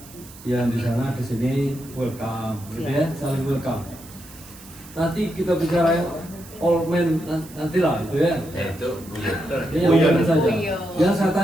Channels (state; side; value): noise; right; hiss, 20 dB below the sound